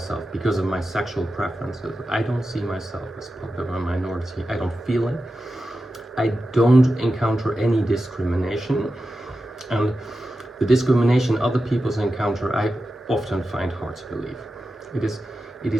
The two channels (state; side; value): normal; both; correlation 0.92